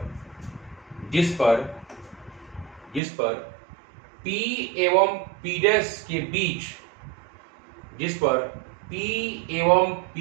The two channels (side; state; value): left; drops out; at 3.0 s